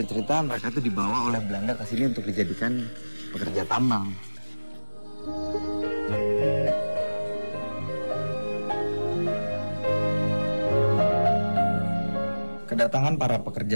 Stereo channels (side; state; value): both; inverted; correlation -1.00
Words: cerita mereka itu dibawa oleh Belanda ke sini untuk dijadikan pekerja tambang. Kedatangan para